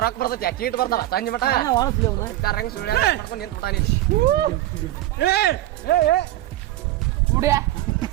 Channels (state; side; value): quieter; left; 15.1 dB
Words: ರೊಕ್ಕ ಬರ್ತೈತಿ, ಚೀಟ್ ಬರ್ತಾವ ಸಂಜೆ ಮಟ ರಂಗ್ ಸುಳ್ಯ ಮಾಡ್ಕೊಂಡು ನಿಂತ ಬಿಟ್ಟಾನಿ.